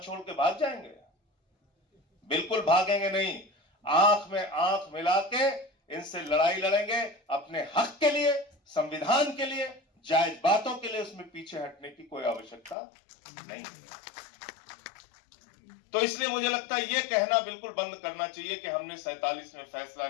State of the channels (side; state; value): right; drops out; at 12.8 s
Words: के भाग जाएंगे? बिल्कुल भागेंगे नहीं। आंख में आंख मिला के इनसे लड़ाई लड़ेंगे, अपने हक के लिए, संविधान के लिए, जायज बातों के लिए। उसमें पीछे हटने की कोई आवश्यकता नहीं है। तो इसलिए मुझे लगता है ये कहना बिल्कुल बंद करना चाहिए कि हमने 47 में फैसला